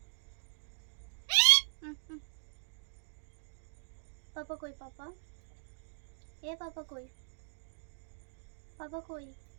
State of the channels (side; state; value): left; silent; digital silence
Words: পাপা কই? পাপা এ পাপা কই? পাপা কই?